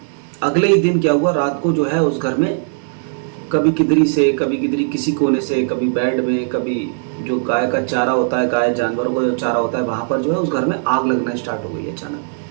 अगले ही दिन क्या हुआ, रात को जो है उस घर में कभी किधरी से, कभी किधरी किसी कोने से, कभी बेड में, कभी जो गाय का चारा होता है, गाय जानवरों का जो चारा होता है वहाँ पर जो है उस घर में आग लगना स्टार्ट हो गई अचानक।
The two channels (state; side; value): silent; left; 67 dB below the other